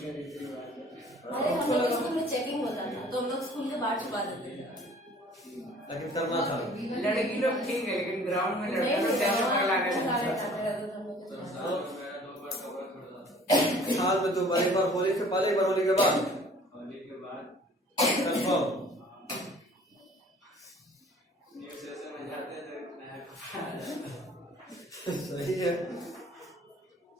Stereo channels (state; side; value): normal; both; correlation 0.51